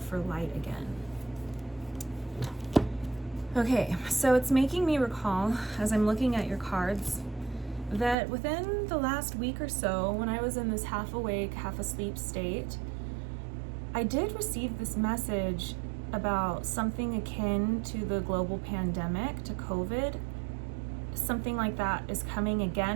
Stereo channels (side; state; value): left; drops out; at 8.2 s